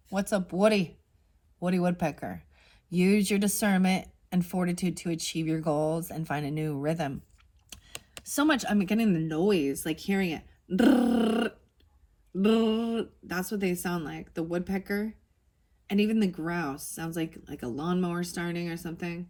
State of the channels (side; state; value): both; identical; correlation 1.00